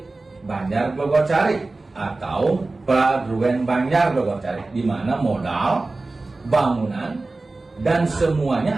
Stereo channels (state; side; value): quieter; left; 3.3 dB